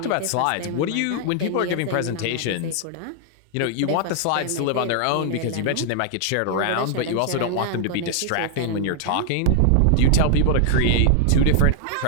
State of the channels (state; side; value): different; both; correlation -0.01